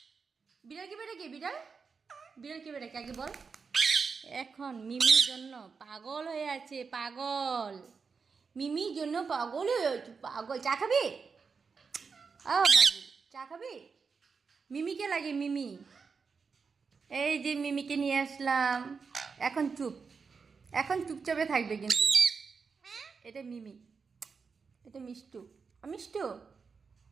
বিড়াল কিভাবে ডাকে? বিড়াল বিড়াল কিভাবে ডাকে আগে বল। এখন মিমির জন্য পাগল হয়ে আছে, পাগল। মিমির জন্য পাগল হয়ে আছে, পাগল। চা খাবি? বাবু চা খাবি? মিমিকে লাগে, মিমি। এই যে মিমিকে নিয়ে আসলাম। এখন চুপ, এখন চুপচাপে থাকবে কিন্তু। এটা মিমি, এটা মিষ্টু। মিষ্টু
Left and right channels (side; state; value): left; quieter; 5.3 dB